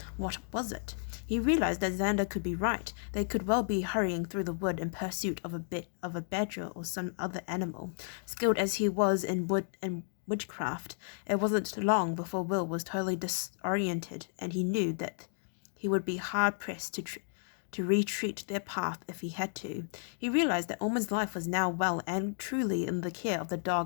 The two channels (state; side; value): silent; right; digital silence